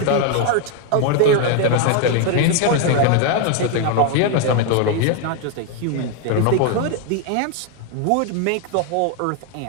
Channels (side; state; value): both; different; correlation 0.01